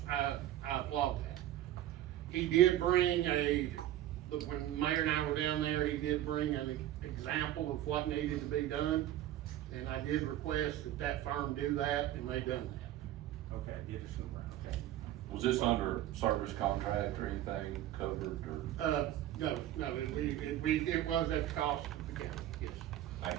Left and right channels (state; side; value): quieter; left; 13.0 dB